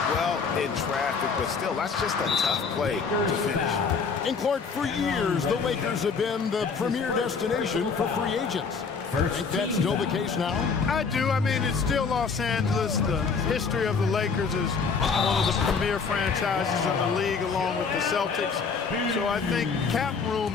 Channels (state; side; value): quieter; right; 5.3 dB